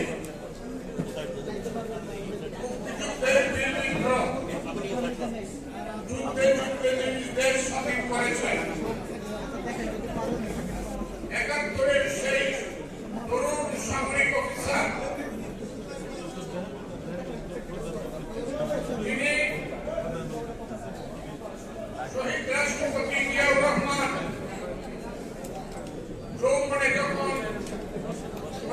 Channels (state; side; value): identical; both; correlation 1.00